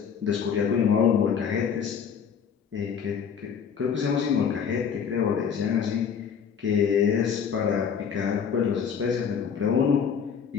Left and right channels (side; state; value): right; quieter; 7.1 dB